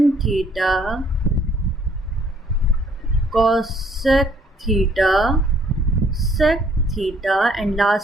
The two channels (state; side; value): normal; both; correlation 0.63